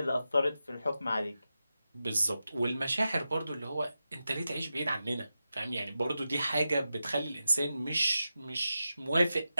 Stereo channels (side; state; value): both; inverted; correlation -0.91